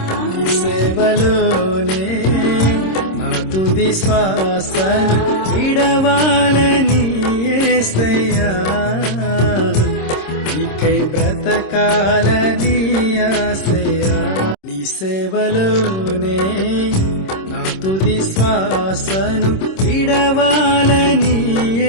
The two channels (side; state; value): right; late; 26 ms